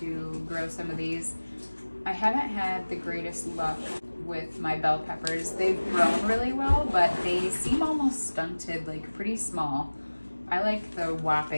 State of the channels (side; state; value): both; inverted; correlation -1.00